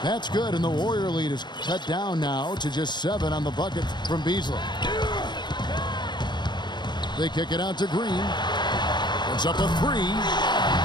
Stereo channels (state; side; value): late; right; 0.21 ms